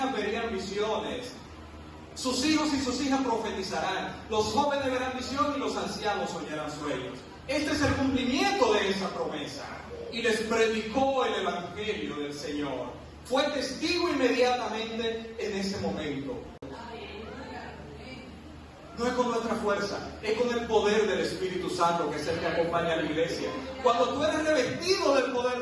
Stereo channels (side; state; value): both; identical; correlation 1.00